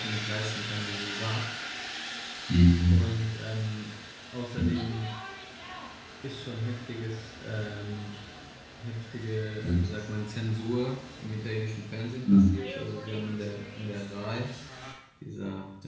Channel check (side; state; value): both; identical; correlation 1.00